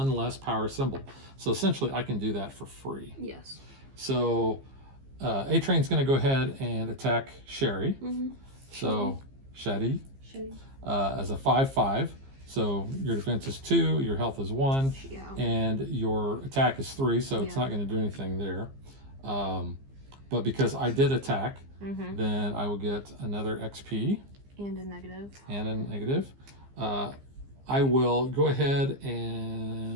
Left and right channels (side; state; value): left; late; 15 ms